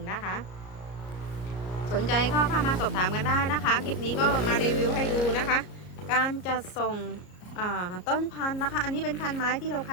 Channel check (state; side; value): late; right; 33 ms